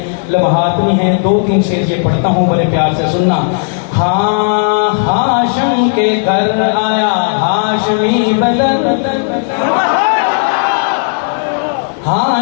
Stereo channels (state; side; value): silent; right; digital silence